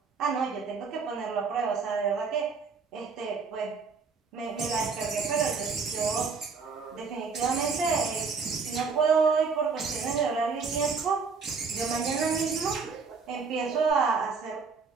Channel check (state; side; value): quieter; left; 5.0 dB